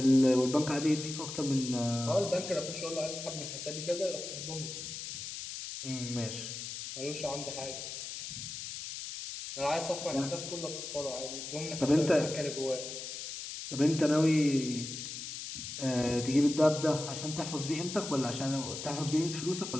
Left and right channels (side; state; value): left; noise; hiss, 7 dB below the sound